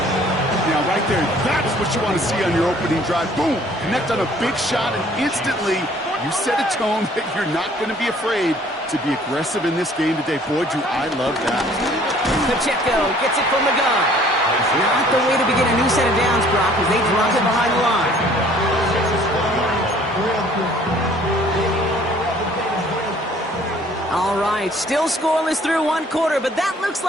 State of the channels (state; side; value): normal; both; correlation 0.56